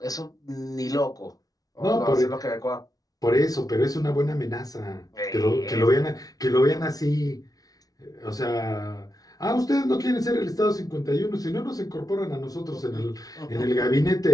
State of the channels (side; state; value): right; late; 0.18 ms